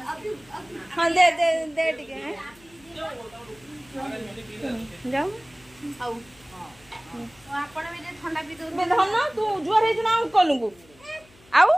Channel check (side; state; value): left; noise; hum, 27 dB below the sound